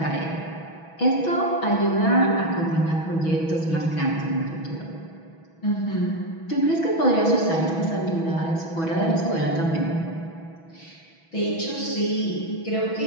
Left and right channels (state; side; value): late; right; 6.1 ms